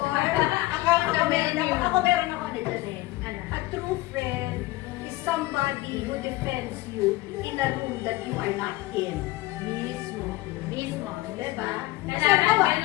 ako meron ako nito eh. Ano? A true friend is somebody who defends you in a room that you are not in. Mismo. Mismo. Diba? Kasi Dapat ako,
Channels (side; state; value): right; quieter; 18.5 dB